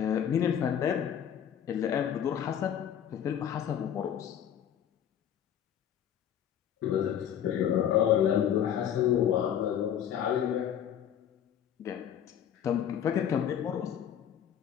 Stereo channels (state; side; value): quieter; right; 9.5 dB